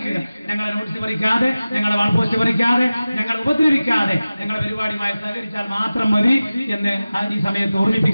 ഞങ്ങളെ നോട്ടീസ് പറിക്കാതെ, ഞങ്ങളെ വാൾ പോസ്റ്റ് പറിക്കാതെ, ഞങ്ങളെ ഉപദ്രവിക്കാതെ ഞങ്ങളുടെ പരിപാടിയുമായി സഹകരിച്ചാൽ മാത്രം മതി എന്ന് ഈ സമയത്ത്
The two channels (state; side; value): inverted; both; correlation -0.96